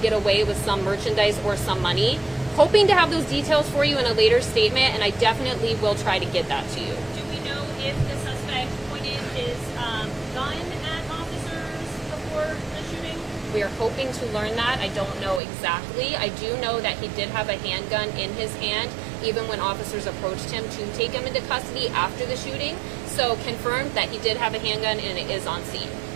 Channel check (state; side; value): drops out; left; at 15.4 s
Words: get away with some merchandise or some money. Hoping to have those details for you in a later statement, and I definitely will try to get that to you. Do we know if the suspect pointed his gun at officers before the shooting? We are hoping to learn that. I don't know exactly. I do know that he did have a handgun in his hand, even when officers approached him to take him into custody after the shooting. So confirmed that he did have a handgun and it is on scene.